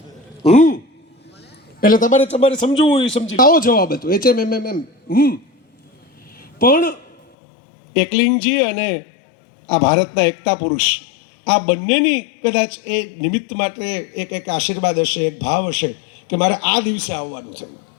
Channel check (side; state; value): right; drops out; at 7.2 s